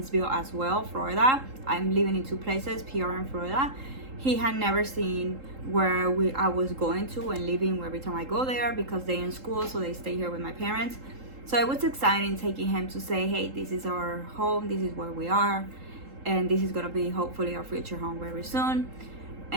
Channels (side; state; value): left; late; 3.8 ms